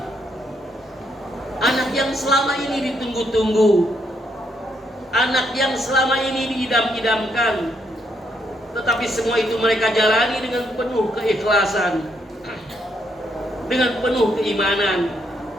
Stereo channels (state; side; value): normal; both; correlation 0.75